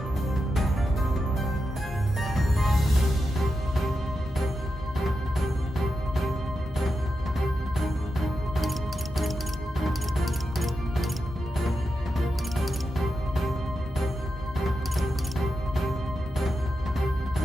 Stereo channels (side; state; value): both; normal; correlation 0.88